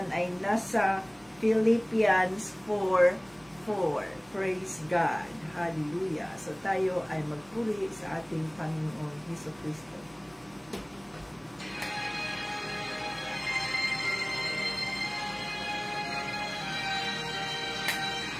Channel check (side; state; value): right; noise; hum, 28 dB below the sound